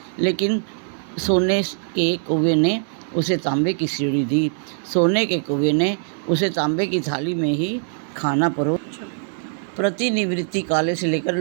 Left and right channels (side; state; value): left; silent; digital silence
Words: लेकिन सोने के कौवे ने उसे तांबे की सीढ़ी दी। सोने के कौवे ने उसे तांबे की थाली में ही खाना परोसा। प्रतिनिवृत्ति काले से लेकर